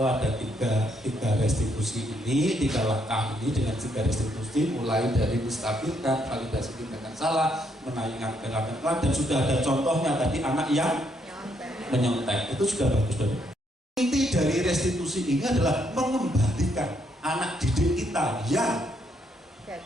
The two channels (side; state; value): both; normal; correlation 0.74